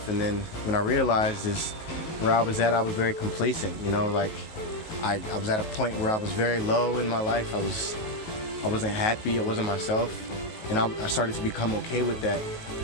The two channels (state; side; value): late; right; 19 ms